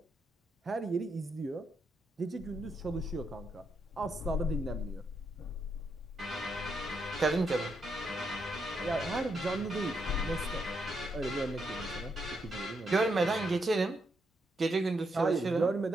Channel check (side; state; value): both; normal; correlation 0.80